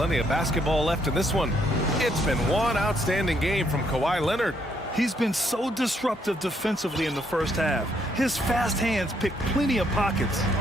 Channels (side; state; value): both; normal; correlation 0.72